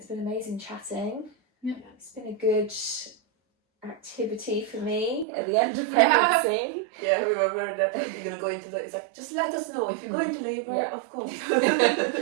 been amazing chatting. Yeah. It's been a good activity for me at the end of pregnancy. Yeah, we were worried that you're going to go into it's like, just let us know if you go into labour, of course.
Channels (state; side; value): drops out; left; at 5.2 s